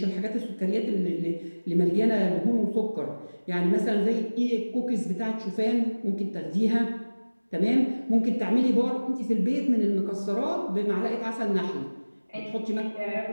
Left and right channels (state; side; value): inverted; both; correlation -1.00